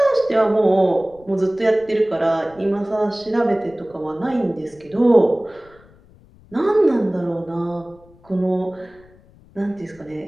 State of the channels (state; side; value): noise; left; rumble, 27 dB below the sound